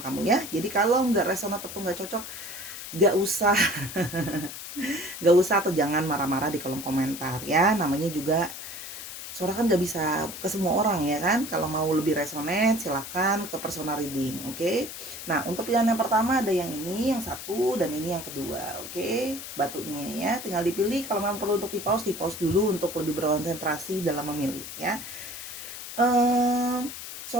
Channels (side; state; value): left; noise; hiss, 10 dB below the sound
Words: ya. Jadi kalau nggak resonat atau nggak cocok, nggak usah nggak usah atau jangan marah-marah di kolom komentar ya. Namanya juga Sora kan nggak bisa ke semua orang ya kan. Kalau mau lebih resonate silahkan ke personal reading, oke? Nah untuk pilihan yang pertama ada yang ini, yang satu, dan ini yang kedua, oke? Batunya ya, tinggal dipilih. Kalau memang perlu untuk di pause dulu untuk lebih berkonsentrasi dalam memilih ya.